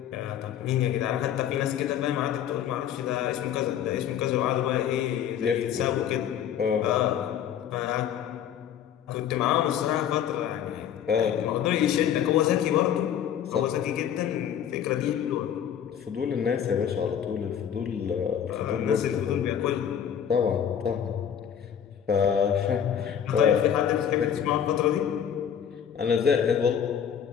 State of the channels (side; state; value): right; quieter; 9.1 dB